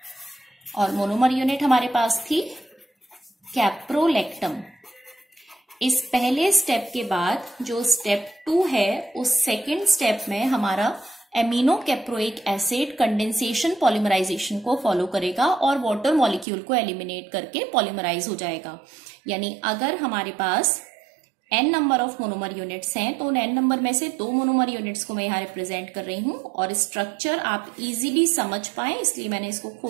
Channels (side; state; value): left; drops out; at 16.4 s